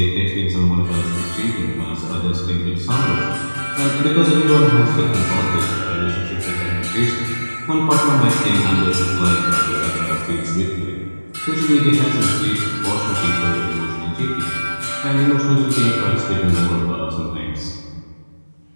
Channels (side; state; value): both; inverted; correlation -1.00